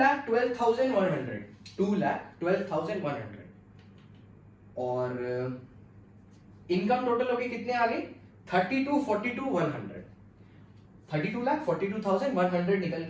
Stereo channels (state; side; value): identical; both; correlation 1.00